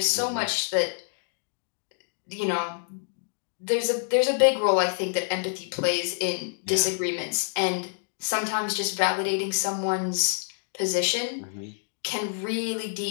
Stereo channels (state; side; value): silent; right; digital silence